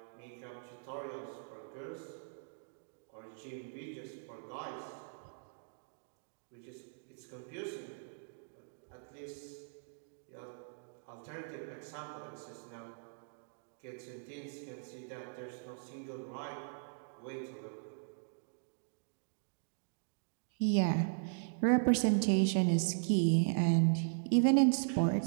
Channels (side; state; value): left; silent; digital silence